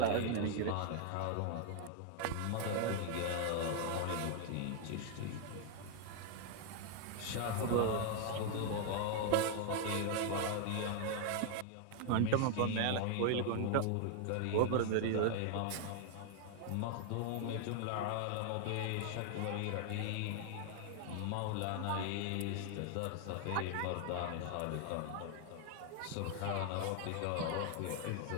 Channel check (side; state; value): both; different; correlation 0.00